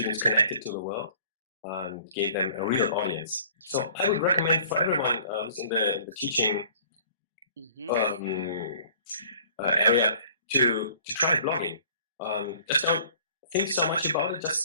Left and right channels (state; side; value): inverted; both; correlation -0.51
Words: connected to the world and gave them a real audience. So I would recommend for everyone who's in the teaching area to try blogging. Just don't think so much about it. Just